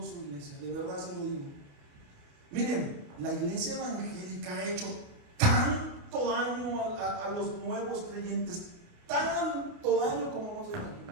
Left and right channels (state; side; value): late; left; 29 ms